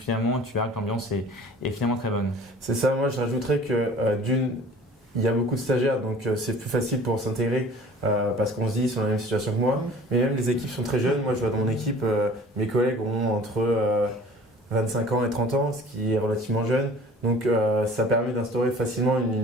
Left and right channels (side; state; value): both; normal; correlation 0.47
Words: tu verras que l'ambiance est finalement très bonne. C'est ça. Moi, je rajouterais que il y a beaucoup de stagiaires, donc c'est plus facile pour s'intégrer parce qu'on se dit ils sont dans la même situation que moi. Mais même les équipes sont très jeunes. Moi, je vois dans mon équipe, mes collègues ont entre 25 ans et 30 ans, ce qui est relativement jeune. Donc ça permet d'instaurer facilement